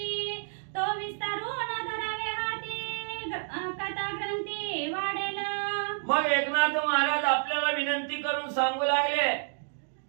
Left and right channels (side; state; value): left; silent; digital silence